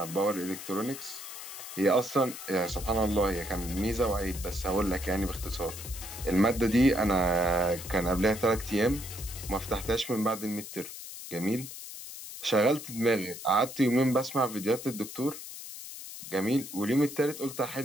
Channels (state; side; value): noise; left; hiss, 11 dB below the sound